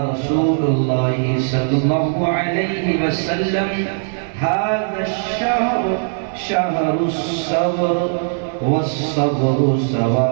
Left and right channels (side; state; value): left; silent; digital silence